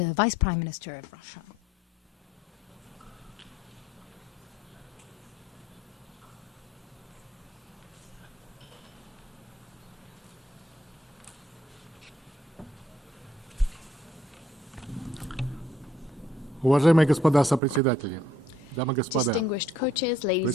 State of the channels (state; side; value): normal; both; correlation 0.65